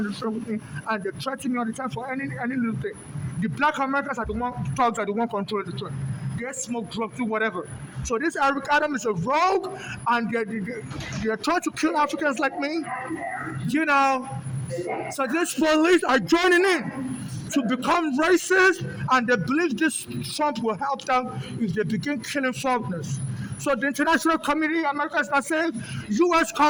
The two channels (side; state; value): both; identical; correlation 1.00